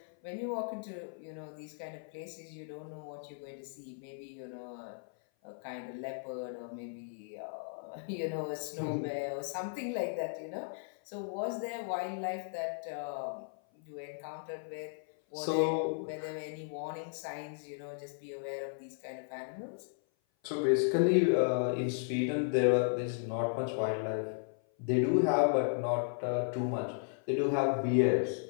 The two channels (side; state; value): right; silent; 54 dB below the other